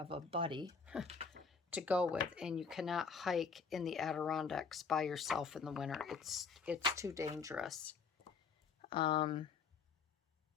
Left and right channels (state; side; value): quieter; right; 5.5 dB